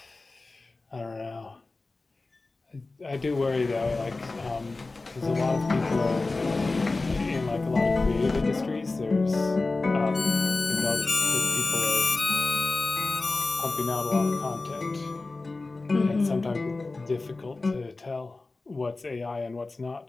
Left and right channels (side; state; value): right; quieter; 3.4 dB